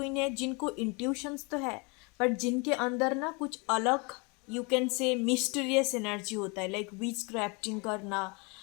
है जिनको इंट्यूशंस तो है, बट जिनके अंदर ना कुछ अलग, यू कैन से मिस्टीरियस एनर्जी होता है, लाइक विच क्राफ्टिंग करना,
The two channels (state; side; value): quieter; right; 30.4 dB